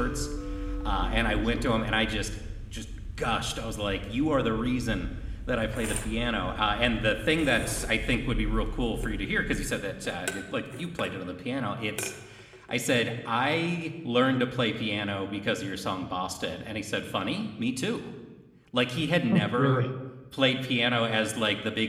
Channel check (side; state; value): both; identical; correlation 1.00